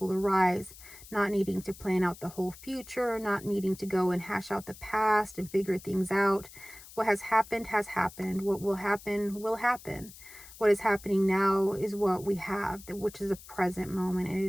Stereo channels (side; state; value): left; noise; hiss, 18 dB below the sound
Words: arise. Not needing to plan out the whole future, not needing to go and hash out the past and figure things out. What has happened has happened. What will happen will happen. What is happening now is what we have, which is a present moment,